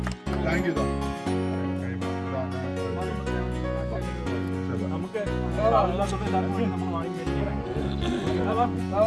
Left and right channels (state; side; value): identical; both; correlation 1.00